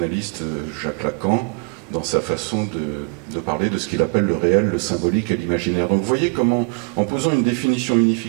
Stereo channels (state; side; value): quieter; left; 35.6 dB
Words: Jacques Lacan dans sa façon de parler de ce qu'il appelle le réel, le symbolique et l'imaginaire. Donc vous voyez comment, en posant une définition